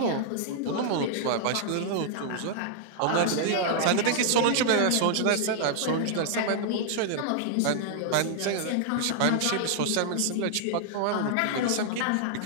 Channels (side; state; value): both; different; correlation 0.00